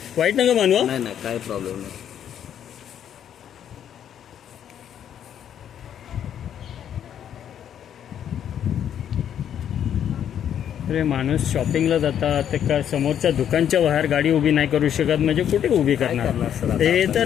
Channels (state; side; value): quieter; right; 9.6 dB